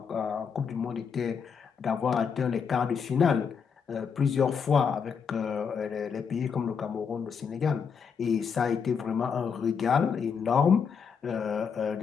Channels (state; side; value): quieter; right; 6.4 dB